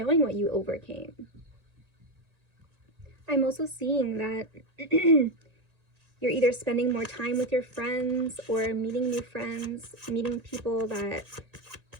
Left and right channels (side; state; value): left; late; 1.9 ms